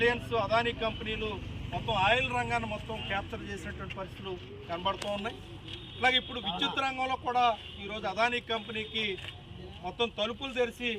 అదానీ కంపెనీలు మొత్తం ఆయిల్ రంగాన్ని మొత్తం క్యాప్చర్ చేసినటువంటి పరిస్థితులు కనబడుతూ ఉన్నాయి. అలాగే ఇప్పుడు విద్యుత్ రంగంలో కూడా ఈరోజు అదానీ కంపెనీకి మొత్తం తలుపులు తెరిచి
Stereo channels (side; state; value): both; identical; correlation 1.00